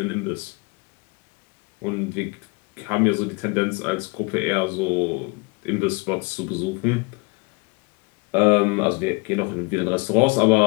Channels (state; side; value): quieter; right; 29.4 dB